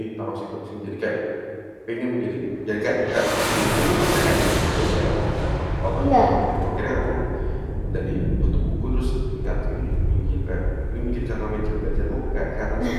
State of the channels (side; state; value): both; identical; correlation 1.00